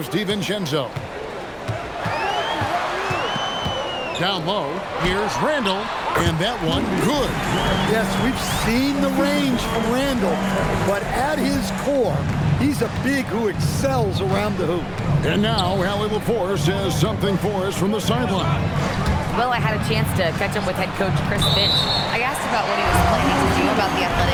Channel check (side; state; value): both; identical; correlation 1.00